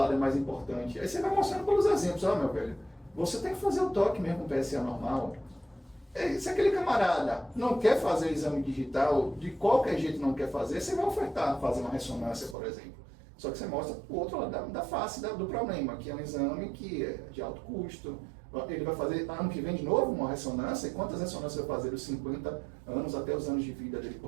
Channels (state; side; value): drops out; left; at 12.6 s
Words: é mais importante? Aí você vai mostrando pelos exemplos, ó, meu velho, você tem que fazer o toque mesmo com PSA normal. Se aquele camarada não quer fazer exame digital, de qualquer jeito não quer fazer, você vai ofertar fazer uma ressonância, por exemplo. Só que você mostra o outro lado da face do problema, que é um exame que é de alto custo. Ele vai fazer ano que vem de novo uma ressonância, e quantas ressonâncias vai fazer dos 50 anos até os anos de vida dele